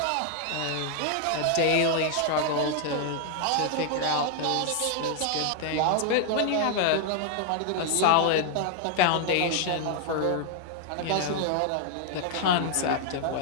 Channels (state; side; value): different; both; correlation 0.00